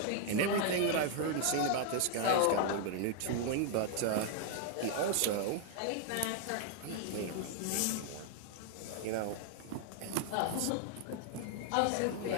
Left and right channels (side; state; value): both; different; correlation 0.00